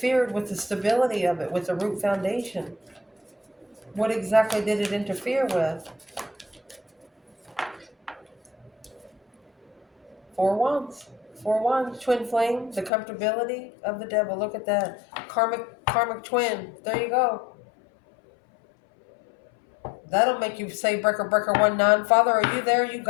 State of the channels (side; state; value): right; drops out; at 12.9 s